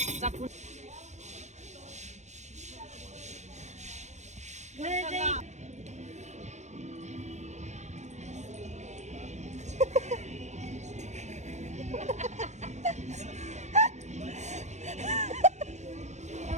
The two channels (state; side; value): late; left; 0.33 ms